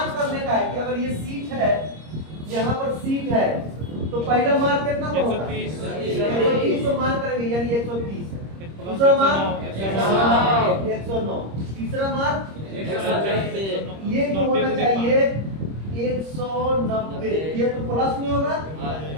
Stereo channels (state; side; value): late; left; 26 ms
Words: करने का है कि अगर ये सीट है, यहाँ पर सीट है, तो पहला मान कितना पर होगा? 130 तो मान करेंगे यानी 130। दूसरा मान 109, तीसरा मान ये तो होना चाहिए 190। ये तो प्लस में होगा